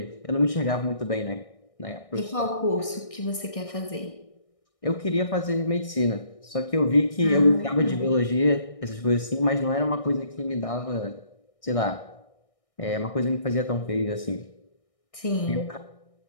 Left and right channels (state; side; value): late; right; 1.6 ms